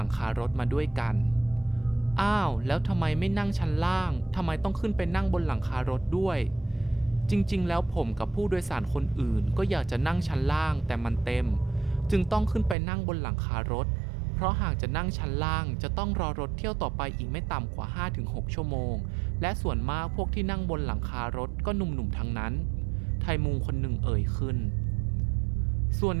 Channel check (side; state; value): left; drops out; at 12.8 s